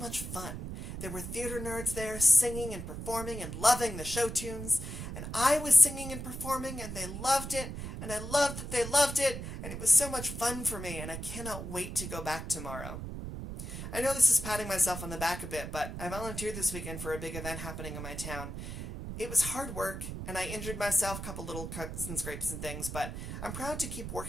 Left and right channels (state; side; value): noise; right; rumble, 7 dB below the sound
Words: fun. There were theater nerds there singing and performing and loving the show tunes, and I was singing and performing, and they loved it, and I loved that they loved it, and it was so much fun for me, and I cannot wait to go back tomorrow. I know this is patting myself on the back a bit, but I volunteered this weekend for a big event happening in my town. It was hard work, and I injured myself, a couple little cuts and scrapes and things, but I'm proud to keep